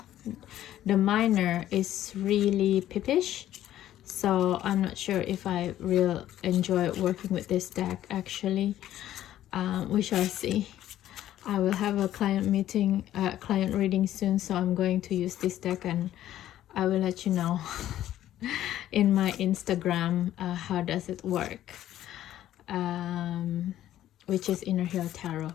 minor is really pippish, so I'm not sure if I will enjoy working with this deck actually. We shall see. I will have a client meeting, client reading soon, so I'm going to use this deck and I will let you know in my Instagram how does it work. which is Inner Hill Tarot,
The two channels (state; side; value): quieter; right; 12.7 dB